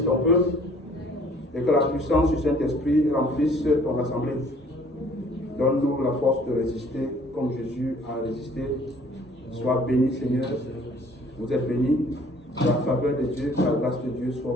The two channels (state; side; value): normal; both; correlation 0.56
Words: ton peuple, et que la puissance du Saint-Esprit remplisse ton assemblée. Donne-nous la force de résister comme Jésus a résisté. Sois béni, Seigneur. Vous êtes bénis. La faveur de Dieu, la grâce de Dieu soit